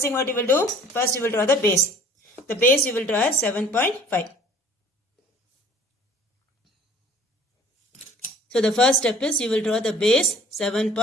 thing what you will do? First you will draw the base. The base you will draw as 7.5. So the first step is you will draw the base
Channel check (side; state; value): both; normal; correlation 0.51